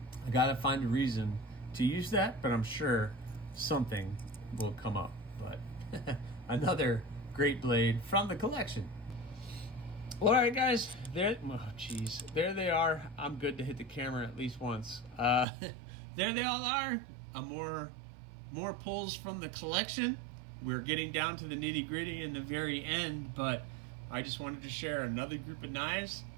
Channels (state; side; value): drops out; left; at 15.5 s